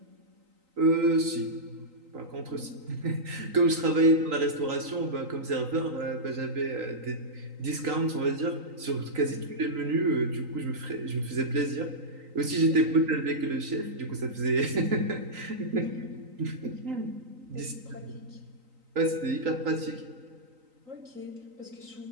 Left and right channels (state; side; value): late; left; 3.9 ms